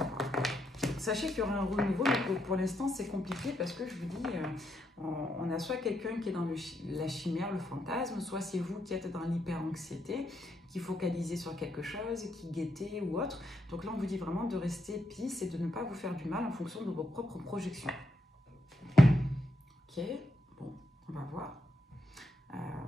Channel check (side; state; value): both; normal; correlation 0.80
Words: voir. Sachez qu'il y aura un renouveau, mais pour l'instant, c'est compliqué parce que je vous dis, on a soit quelqu'un qui est dans la chimère, le fantasme, soit c'est vous qui êtes dans l'hyper-anxiété, qui focalisez sur quelque chose, qui guettez ou autre. Donc là, on vous dit vraiment de rester peace et de ne pas vous faire du mal en fonction de vos propres projections. Ok, bon, on va voir.